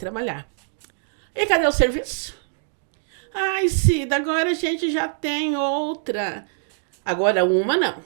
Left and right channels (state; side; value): silent; left; 63 dB below the other